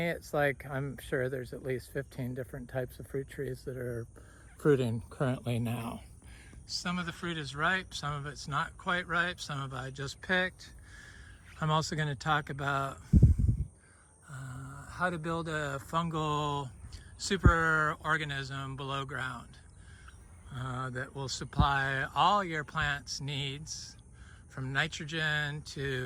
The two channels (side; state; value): both; identical; correlation 1.00